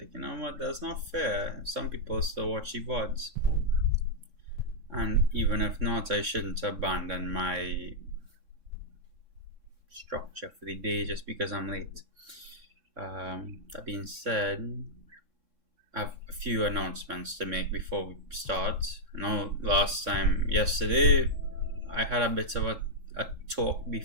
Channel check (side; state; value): left; late; 3.6 ms